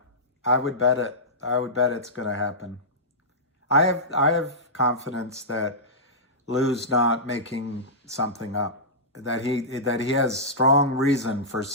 I would bet it. I would bet it's going to happen. I have confidence that Lou's not making something up. That he has strong reason for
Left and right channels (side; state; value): both; normal; correlation -0.15